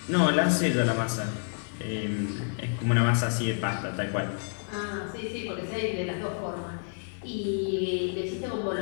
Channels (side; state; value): right; silent; 58 dB below the other